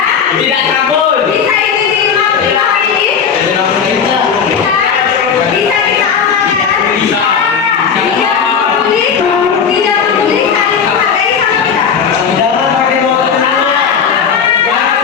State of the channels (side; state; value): right; quieter; 6.8 dB